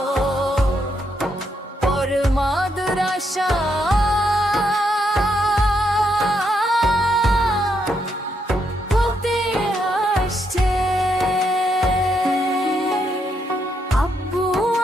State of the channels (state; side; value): normal; both; correlation 0.78